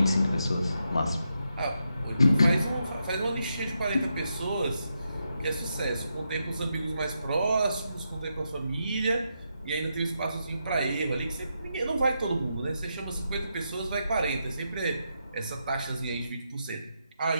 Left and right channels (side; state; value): both; inverted; correlation -0.84